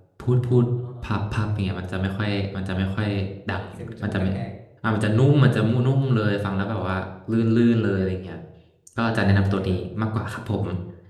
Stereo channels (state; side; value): identical; both; correlation 1.00